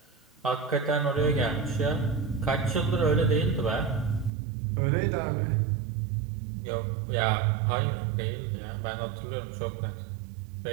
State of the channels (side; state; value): left; drops out; at 4.3 s